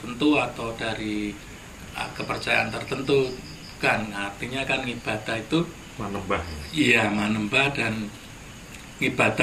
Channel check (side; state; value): both; identical; correlation 1.00